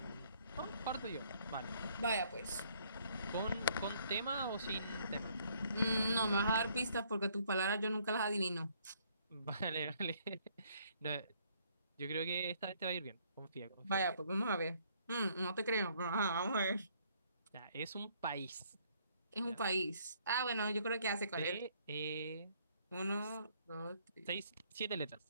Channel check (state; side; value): inverted; both; correlation -0.65